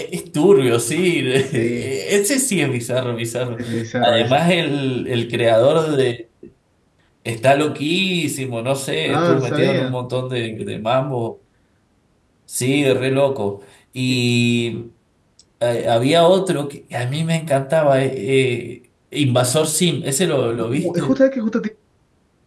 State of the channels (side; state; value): both; identical; correlation 1.00